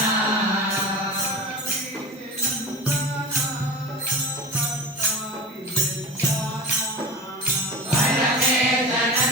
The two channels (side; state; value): both; normal; correlation 0.30